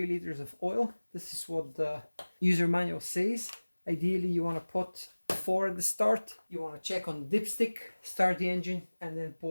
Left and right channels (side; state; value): both; inverted; correlation -1.00